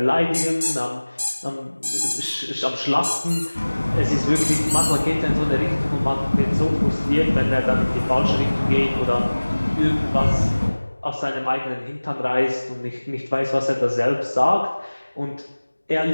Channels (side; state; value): both; inverted; correlation -1.00